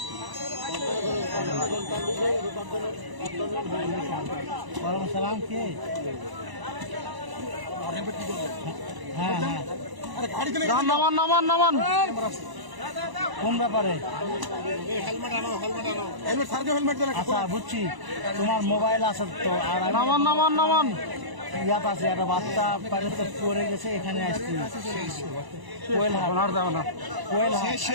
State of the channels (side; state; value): left; late; 1.0 ms